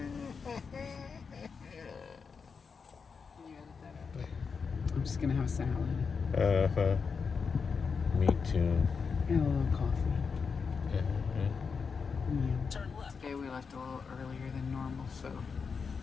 I'm just gonna have a salad. Uh-huh. Me too. And a little coffee. Uh-huh. Yeah. Today we left a little earlier than normal, so.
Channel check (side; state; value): right; quieter; 5.5 dB